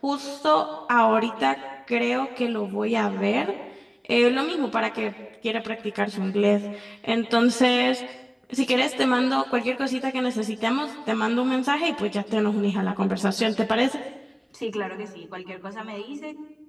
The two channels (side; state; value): both; identical; correlation 1.00